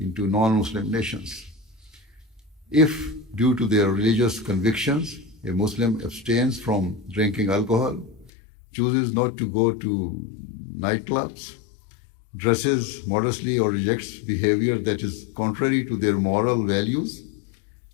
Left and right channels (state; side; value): drops out; right; at 8.3 s